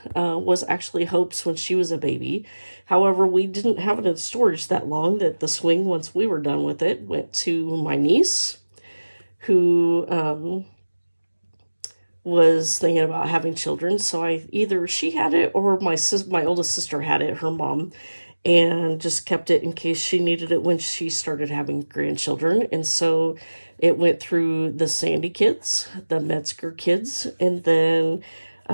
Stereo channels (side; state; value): both; inverted; correlation -1.00